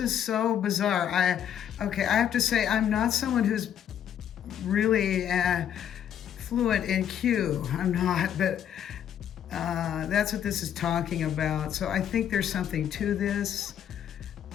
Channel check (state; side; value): quieter; right; 9.6 dB